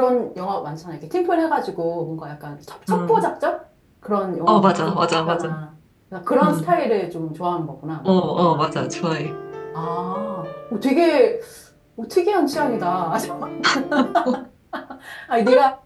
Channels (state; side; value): identical; both; correlation 1.00